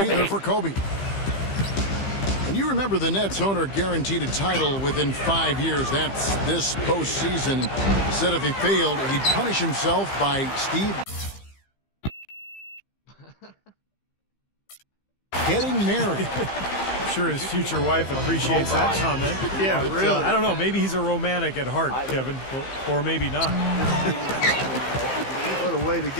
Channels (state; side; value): late; right; 15 ms